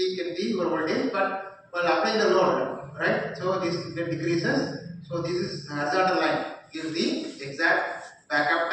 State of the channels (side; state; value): both; identical; correlation 1.00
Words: in the your voltage, but while applying the load, right? So this decreases. So this is horizontal line. Gives the exact backup